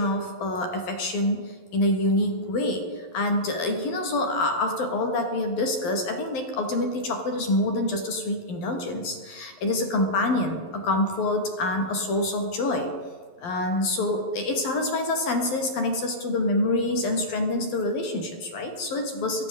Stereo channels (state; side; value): late; right; 11 ms